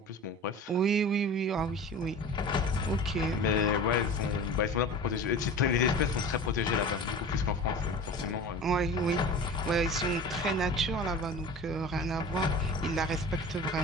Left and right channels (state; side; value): normal; both; correlation 0.36